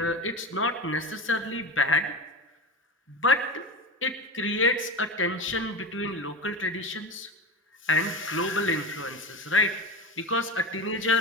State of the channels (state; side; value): normal; both; correlation 0.24